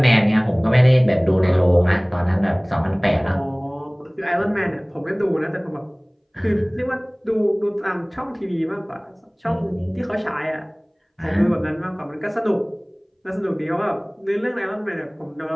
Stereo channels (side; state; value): both; identical; correlation 1.00